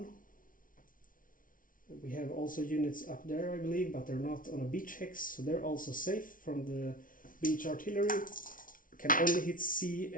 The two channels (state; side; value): late; right; 0.39 ms